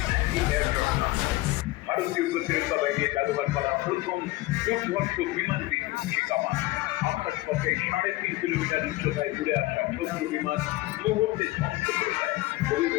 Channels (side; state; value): right; quieter; 19.2 dB